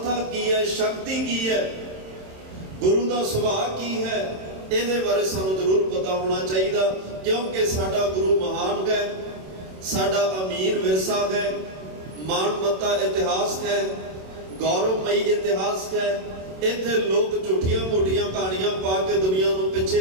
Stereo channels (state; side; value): late; left; 27 ms